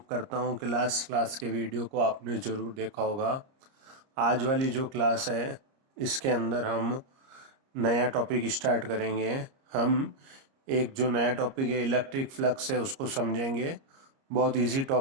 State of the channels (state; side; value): late; left; 30 ms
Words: करता हूँ कि लास्ट क्लास के वीडियो को आपने ज़रूर देखा होगा। आज वाली जो क्लास है इसके अंदर हम नया टॉपिक स्टार्ट करेंगे। हम एक जो नया टॉपिक है इलेक्ट्रिक फ्लक्स है उसको समझेंगे। बहुत इजी